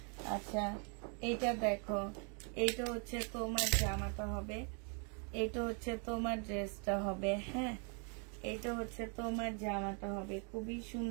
আচ্ছা, এটা দেখো, এটা হচ্ছে তোমার জামাটা হবে, এটা হচ্ছে তোমার ড্রেসটা হবে। হ্যাঁ, এটা হচ্ছে তোমার জামাটা হবে। খুবই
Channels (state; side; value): quieter; left; 38.9 dB